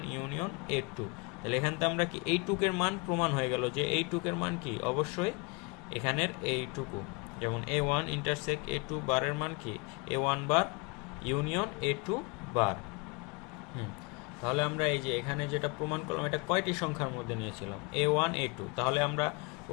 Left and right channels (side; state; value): right; quieter; 29.8 dB